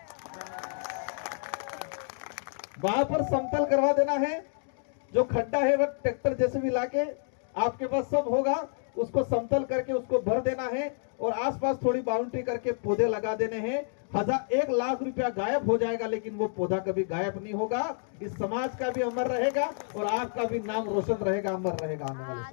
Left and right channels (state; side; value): silent; right; 58 dB below the other